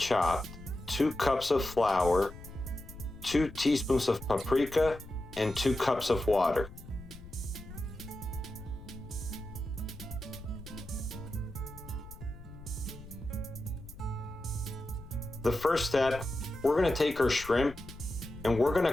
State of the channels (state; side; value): noise; left; rumble, 15 dB below the sound